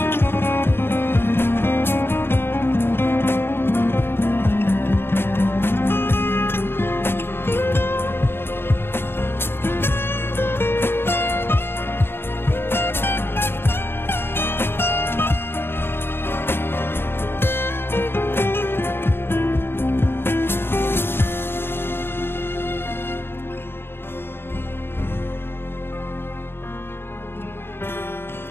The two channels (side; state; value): right; late; 0.11 ms